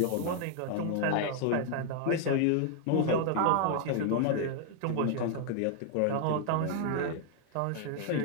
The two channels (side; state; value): both; different; correlation 0.00